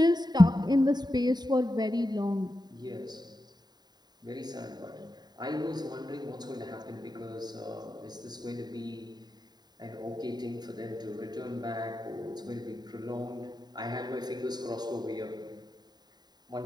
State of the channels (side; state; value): left; late; 0.20 ms